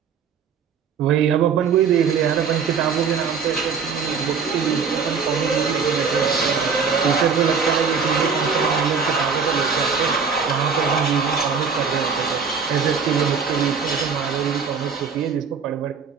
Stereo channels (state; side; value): quieter; left; 5.9 dB